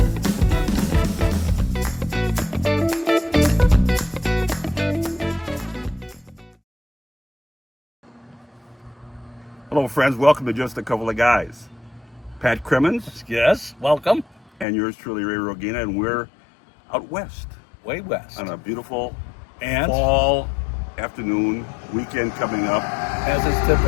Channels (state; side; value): drops out; right; at 14.7 s